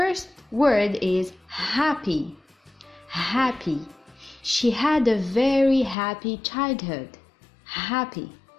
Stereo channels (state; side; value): drops out; right; at 6.0 s